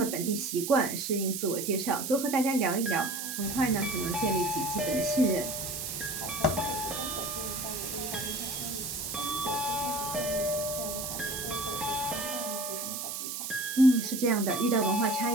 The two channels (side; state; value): right; noise; hiss, 5 dB below the sound